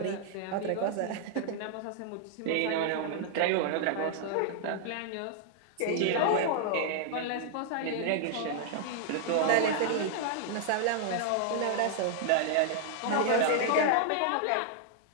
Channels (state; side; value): different; both; correlation -0.01